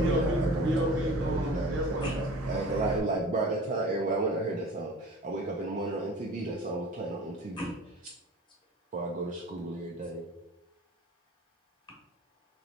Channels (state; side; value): normal; both; correlation 0.41